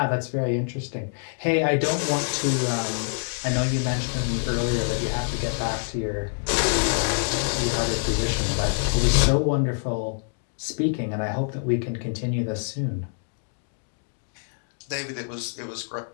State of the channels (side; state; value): right; silent; 61 dB below the other